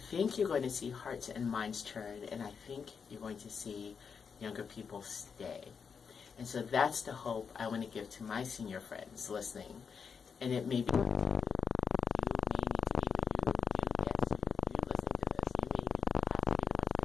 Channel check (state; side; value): quieter; right; 6.2 dB